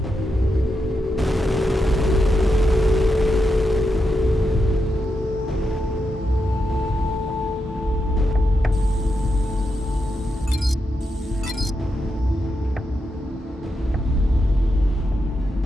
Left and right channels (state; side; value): normal; both; correlation 0.86